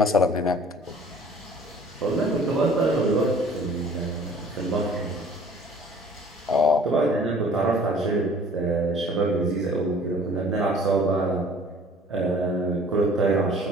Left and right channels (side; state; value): both; normal; correlation 0.51